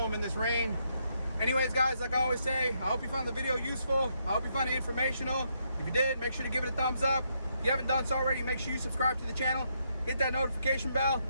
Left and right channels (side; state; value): both; inverted; correlation -0.77